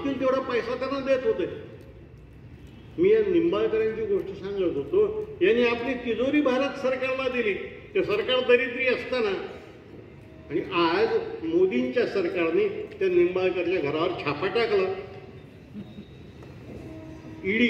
तेवढा पैसा त्यांना देत होते. मी या निंबाळकरांची गोष्ट सांगत होतो. यांनी आपली तिजोरी भारत सरकारला दिली. ते सरकार दरिद्री असताना, आणि आज मोदींच्या सरकारने त्या निंबाळकरच्या घरावर छापा टाकला.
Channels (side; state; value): both; identical; correlation 1.00